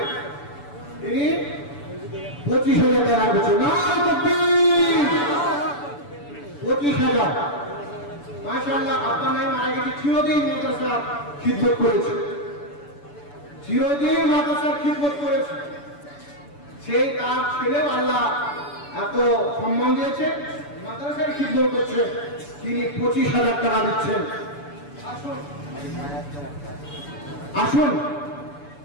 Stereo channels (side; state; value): right; late; 6.9 ms